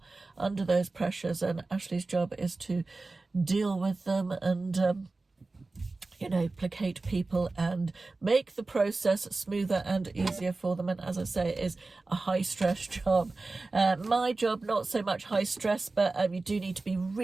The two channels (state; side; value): quieter; left; 3.5 dB